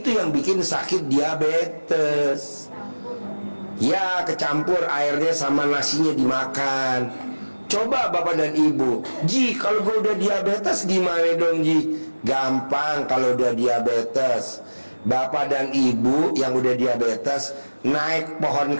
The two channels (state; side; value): inverted; both; correlation -1.00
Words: yang bikin sakit diabetes. Ya kecampur airnya sama nasinya dimakan. Coba bapak dan ibu, Ji kalau gue udah diabetes gimana dong Ji? Gampang kalau udah diabetes. Bapak dan ibu yang udah diabetes naik pohon